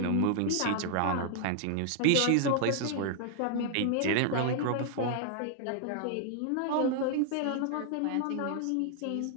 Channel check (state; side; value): different; both; correlation 0.00